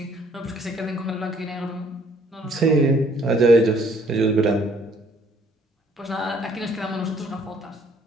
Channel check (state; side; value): normal; both; correlation 0.62